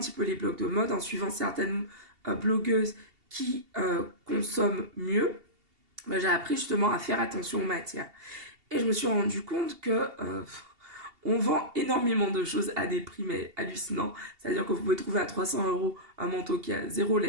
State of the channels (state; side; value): late; left; 2.7 ms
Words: peu les blogs de mode, en suivant certaines blogueuses qui consomment mieux, j'ai appris justement à faire attention aux matières. Et je me suis rendu compte que on vend énormément de choses à des prix mais hallucinants. C'est-à-dire que vous pouvez trouver à 300 € un manteau qui a zéro